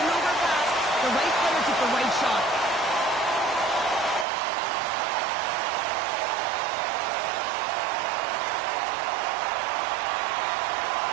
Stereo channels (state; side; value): drops out; left; at 4.2 s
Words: overpass. The right player took the right shot.